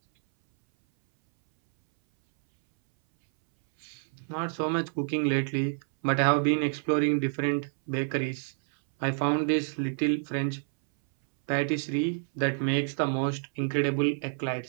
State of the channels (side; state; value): left; silent; 59 dB below the other